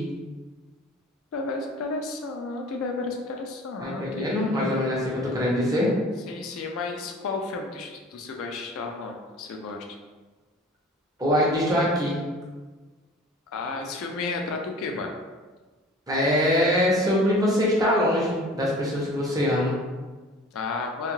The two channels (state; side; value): normal; both; correlation 0.44